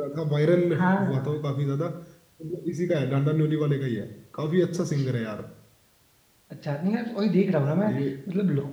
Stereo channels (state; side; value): identical; both; correlation 1.00